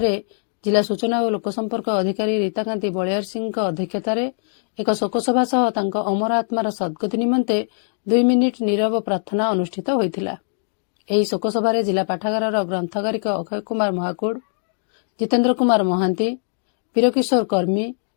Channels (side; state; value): right; silent; digital silence